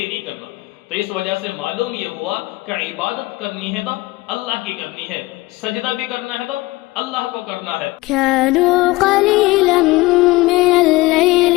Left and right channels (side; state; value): right; quieter; 20.7 dB